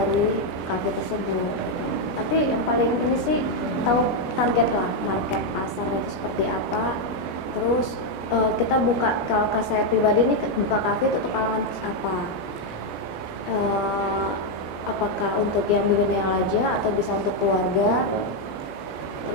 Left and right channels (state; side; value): late; right; 17 ms